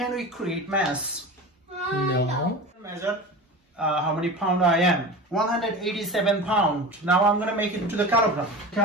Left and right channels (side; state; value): both; normal; correlation 0.31